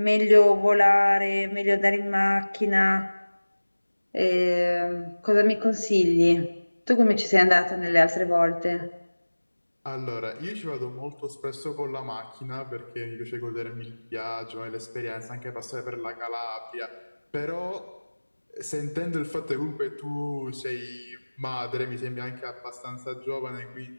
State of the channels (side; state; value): both; inverted; correlation -1.00